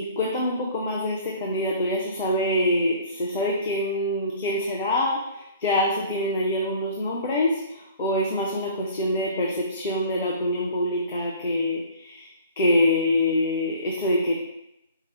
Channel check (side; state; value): both; inverted; correlation -0.49